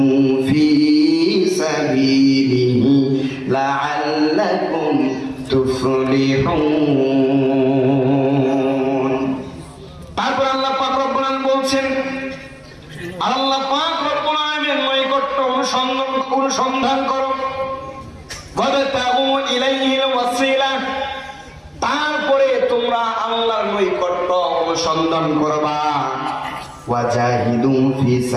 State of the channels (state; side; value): identical; both; correlation 1.00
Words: ফি সাবিলিহি লাআল্লাকুম তুফলিহুন। তারপর আল্লাহ পাক রব্বুল আলামিন বলছেন, আল্লাহ পাক রব্বুল আলামিনের নৈকট্য অনুসন্ধান করো। ওয়াবতাগু ইলাইহিল ওয়াসিলা, তারপরে তোমরা আল্লাহর নৈকট্য অনুসন্ধান করবা। ওয়াজাহিদু ফি